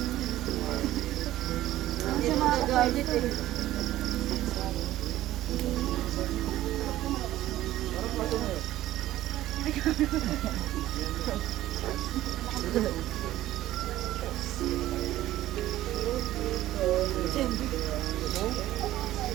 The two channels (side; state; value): left; quieter; 14.6 dB